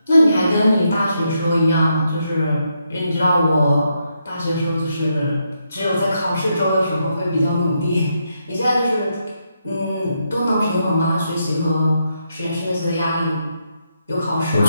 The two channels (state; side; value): inverted; both; correlation -0.80